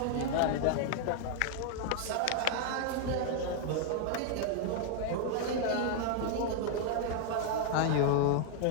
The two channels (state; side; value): different; both; correlation 0.00